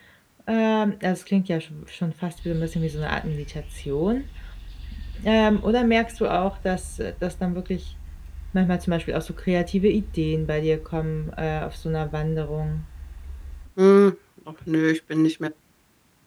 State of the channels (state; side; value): identical; both; correlation 1.00